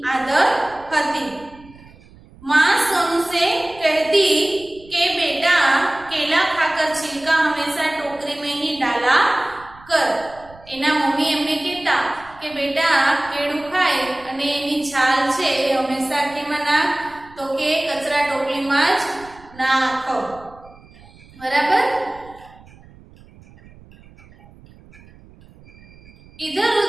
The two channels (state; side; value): noise; right; rumble, 23 dB below the sound